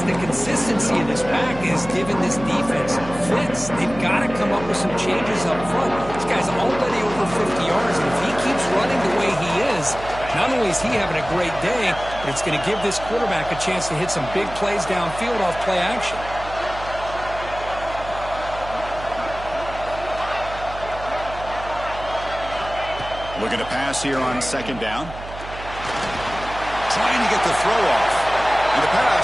the consistency of this back is giving this defense fits. They've got to come up with some changes up front. This guy's already over 50 yards, and if he keeps running the way he is, not only is he having a great day, but it's going to give this quarterback a chance to hit some big plays downfield off play action. Looking to pass here on 2nd down. Trying to get the throw off. And the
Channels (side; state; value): right; noise; hum, 12 dB below the sound